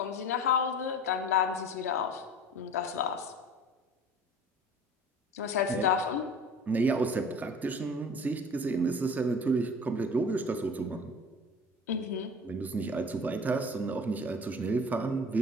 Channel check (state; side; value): normal; both; correlation 0.42